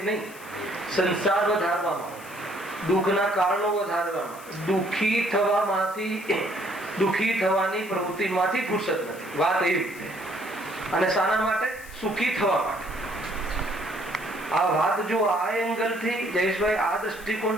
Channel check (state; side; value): noise; left; hiss, 19 dB below the sound